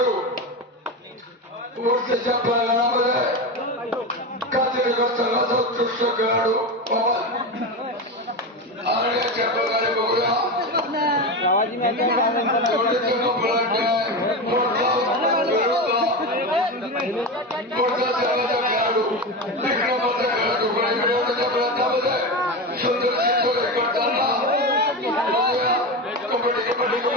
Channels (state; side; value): normal; both; correlation 0.19